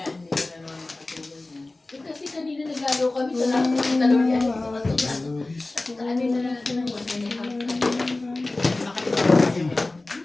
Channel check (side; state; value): right; quieter; 3.0 dB